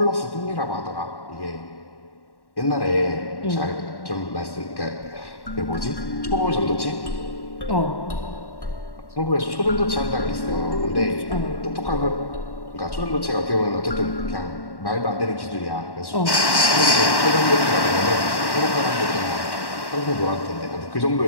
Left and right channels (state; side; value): late; right; 1.1 ms